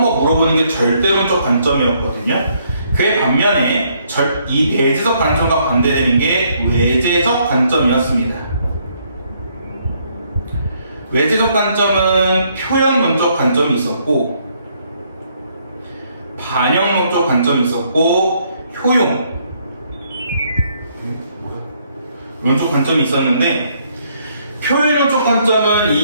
거 물어보는 게 절대론적 관점이었거든요. 그에 반면에 이 내재적 관점과 반대되는 게 외재적 관점이었습니다. 외재적 관점은 표현론적 관점이 있었고, 반영론적 관점이 있었고, 론적 관점이 있었는데, 표현론적 관점은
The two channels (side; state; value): both; inverted; correlation -0.70